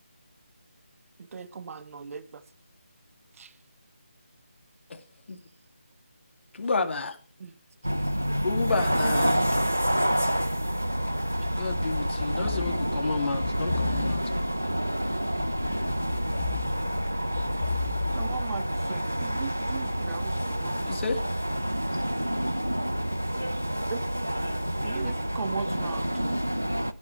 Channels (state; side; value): inverted; both; correlation -0.93